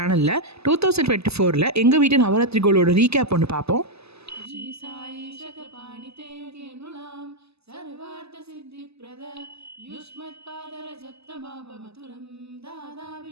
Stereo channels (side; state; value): left; late; 0.79 ms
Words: 2024 எங்கள் வீட்டு நவராத்திரி கோலோட ரீகேப் ஒன்று பார்ப்போம். श्री साई शतपाणिते केनुलां सर्वार्थ सिद्धिप्रद युष्मत्पादरजत्तमापमतुलं दादा